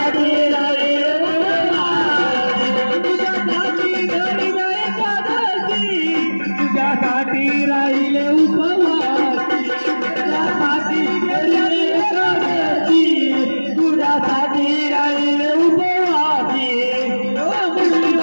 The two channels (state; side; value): inverted; both; correlation -1.00